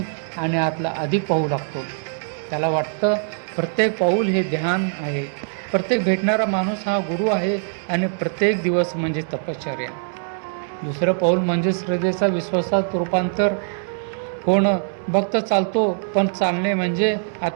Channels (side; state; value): left; silent; 61 dB below the other